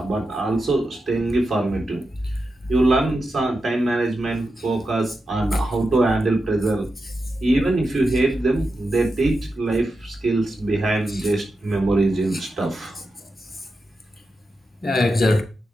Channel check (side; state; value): both; normal; correlation 0.89